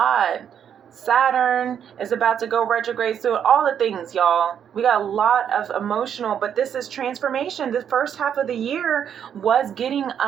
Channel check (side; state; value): left; quieter; 8.6 dB